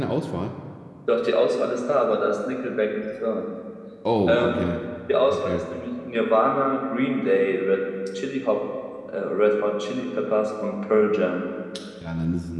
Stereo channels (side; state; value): both; identical; correlation 1.00